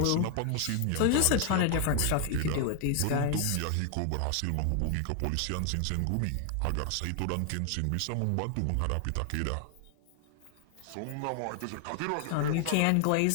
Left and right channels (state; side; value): different; both; correlation 0.00